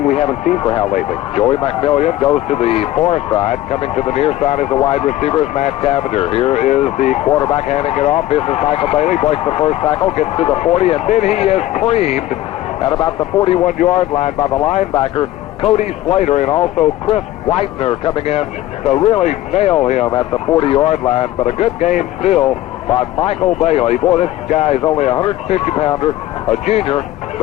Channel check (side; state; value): right; quieter; 15.1 dB